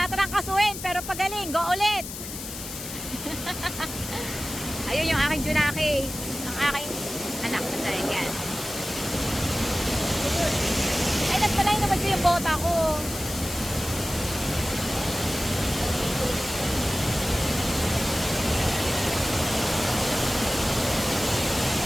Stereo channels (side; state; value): left; noise; hiss, 9 dB below the sound